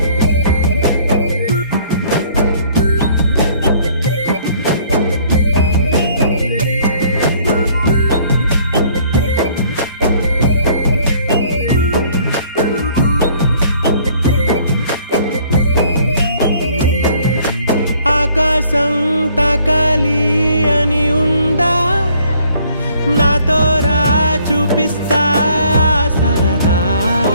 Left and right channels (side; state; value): both; inverted; correlation -0.60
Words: ఆకాశం తాకాలి అని ఉందా నాతో రా చూపిస్తా సరదా